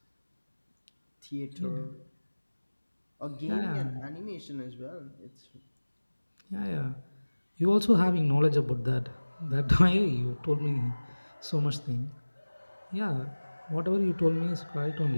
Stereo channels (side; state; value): both; inverted; correlation -1.00